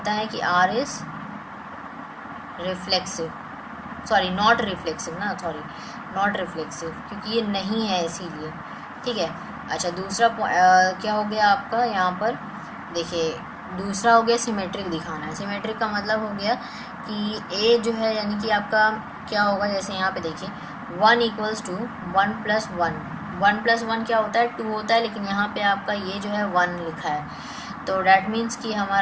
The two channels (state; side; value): identical; both; correlation 1.00